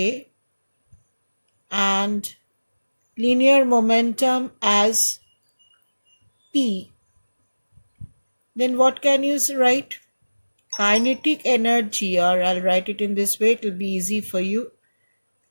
and linear momentum as P, then what can you write? Kinetic energy, or I'll write it in this way, it will be easy for you.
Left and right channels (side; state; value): both; inverted; correlation -1.00